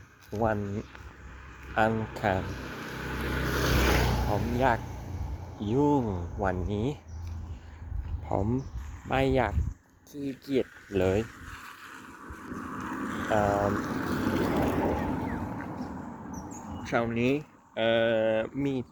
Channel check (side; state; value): both; identical; correlation 1.00